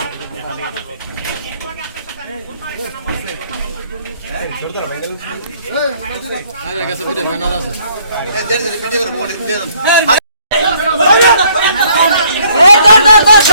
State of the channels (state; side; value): inverted; both; correlation -0.64